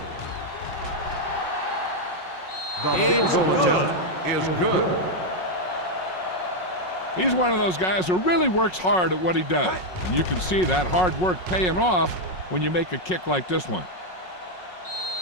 It's good. Is good. He's one of those guys who really works hard at what he does. And you can see that hard work paying off when you make a kick like this one.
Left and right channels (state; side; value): late; right; 5.5 ms